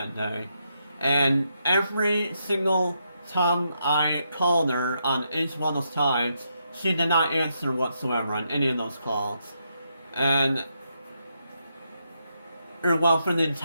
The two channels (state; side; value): inverted; both; correlation -0.81